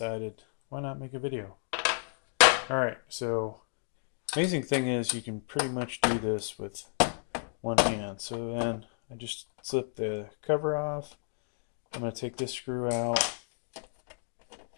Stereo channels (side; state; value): right; silent; digital silence